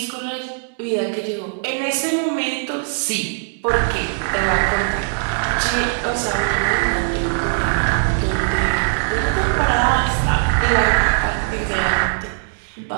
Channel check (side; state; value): left; silent; digital silence